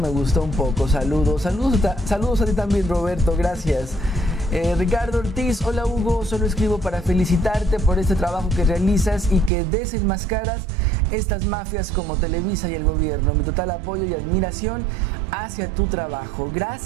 gustó un poco. Saludos a ti también, Roberto, gracias. Ricardo Ortiz, hola Hugo, solo escribo para felicitarte por este trabajo que realizas y que desenmascaras estas mafias como Televisa y el gobierno. Mi total apoyo y admiración hacia tu trabajo.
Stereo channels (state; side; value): drops out; left; at 9.5 s